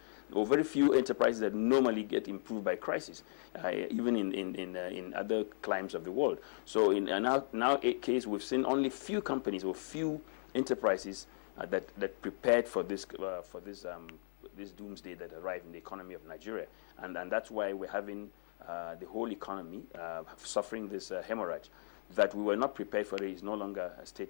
or very few enterprises that normally get improved by crisis, even in other climes of the world. So in our case, we've seen only few companies or few enterprises that prepared for this doomsday that arrived in the economy of Nigeria, and that's why we're having the whole economy suffering this hemorrhage. That we were not prepared for it is no longer a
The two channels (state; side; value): silent; right; 53 dB below the other